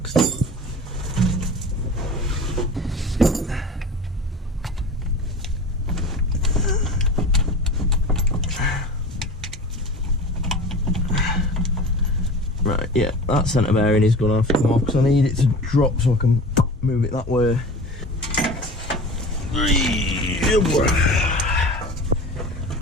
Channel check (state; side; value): normal; both; correlation 0.36